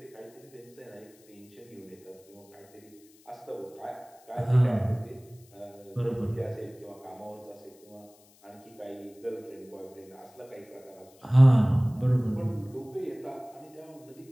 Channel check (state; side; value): noise; left; hiss, 28 dB below the sound